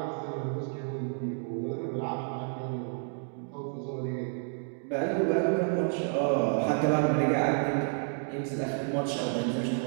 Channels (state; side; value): silent; left; 58 dB below the other